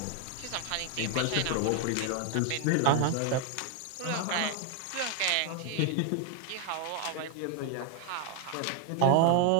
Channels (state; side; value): different; both; correlation 0.00